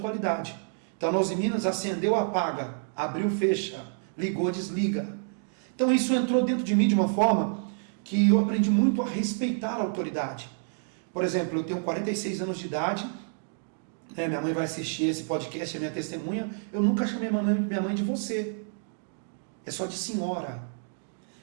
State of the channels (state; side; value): silent; left; digital silence